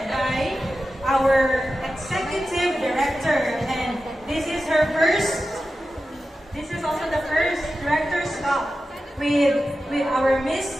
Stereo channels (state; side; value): normal; both; correlation 0.92